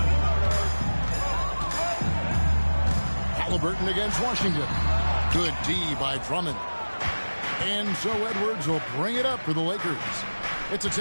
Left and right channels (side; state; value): both; inverted; correlation -1.00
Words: Halliburton against Washington. Good D by Drummond. And so Edwards will bring it up for the Lakers. It's a